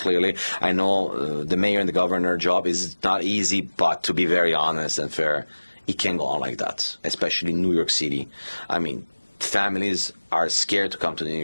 I know the mayor and the governor job is not easy, but to be very honest and fair, it can go on like that, especially in New York City. I mean, families are scared to come to New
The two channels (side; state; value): both; inverted; correlation -1.00